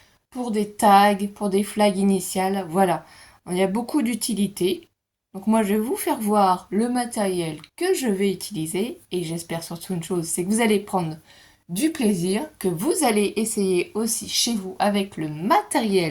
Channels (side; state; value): both; identical; correlation 1.00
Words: pour des tags, pour des flags initiales, voilà. Il y a beaucoup d'utilités. Donc moi je vais vous faire voir le matériel que je vais utiliser et j'espère surtout une chose, c'est que vous allez prendre du plaisir, que vous allez essayer aussi chez vous avec le